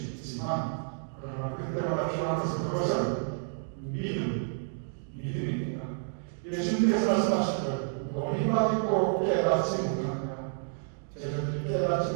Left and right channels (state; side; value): silent; left; digital silence